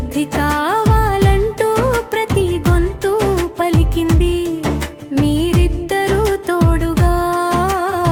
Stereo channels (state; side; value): identical; both; correlation 1.00